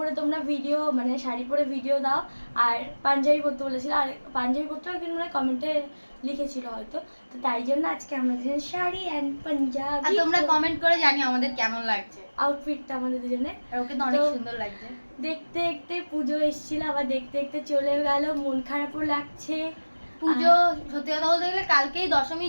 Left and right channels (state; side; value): inverted; both; correlation -1.00